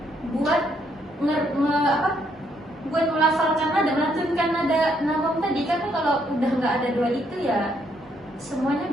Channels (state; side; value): normal; both; correlation 0.72